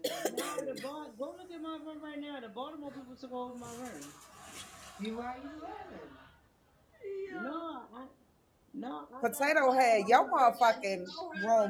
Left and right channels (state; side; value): identical; both; correlation 1.00